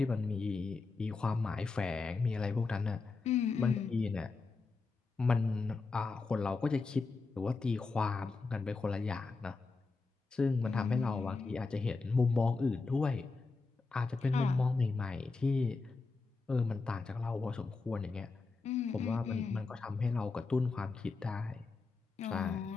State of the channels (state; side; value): quieter; right; 4.1 dB